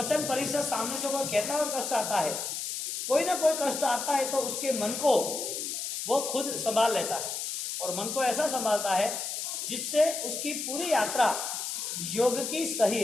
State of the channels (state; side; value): noise; left; hiss, 4 dB below the sound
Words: परिषद सामने से कोई कहता है और कष्ट आता है, कोई ना कोई कष्ट आता है, तो उसके मन को वो खुद संभाल लेता है, और मन को ऐसा संभालता है जिससे उसकी पूरी यात्रा योग की सही